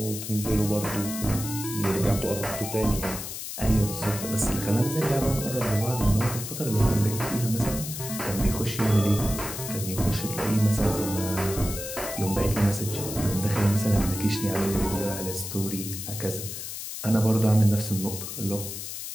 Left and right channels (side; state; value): left; noise; hiss, 7 dB below the sound